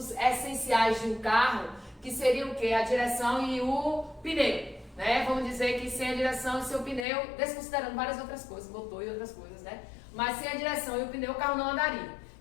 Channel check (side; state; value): right; drops out; at 7.1 s